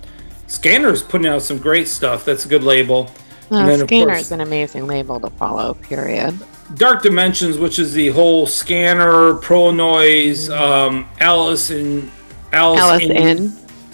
Scanner's putting out some great stuff. That's a good label. Scanner's an amazing label to follow, period. Dark Dimensions, which is the whole Scanner, Pro Noise, Alice in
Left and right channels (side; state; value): both; inverted; correlation -1.00